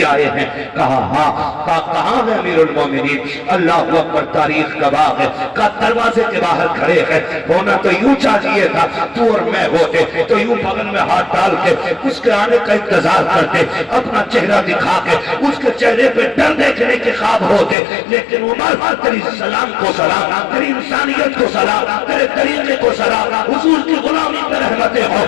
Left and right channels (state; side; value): drops out; right; at 17.8 s